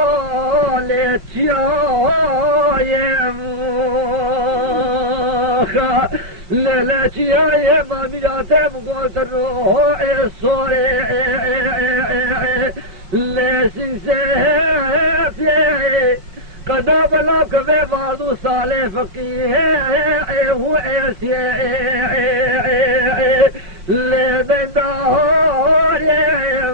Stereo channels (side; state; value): left; late; 5.6 ms